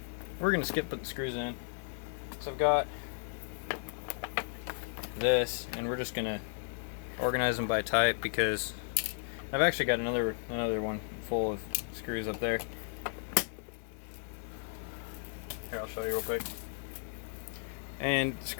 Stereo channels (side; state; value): right; silent; digital silence